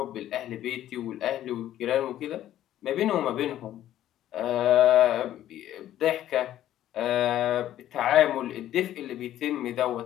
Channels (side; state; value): right; quieter; 12.5 dB